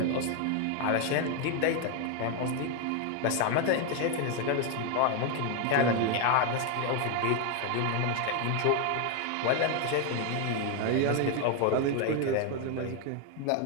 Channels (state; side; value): different; both; correlation 0.01